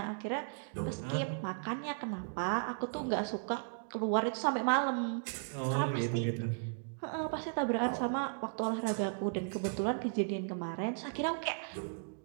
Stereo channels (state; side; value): silent; left; digital silence